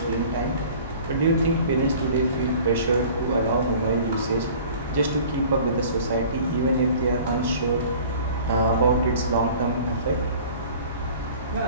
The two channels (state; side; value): inverted; both; correlation -0.46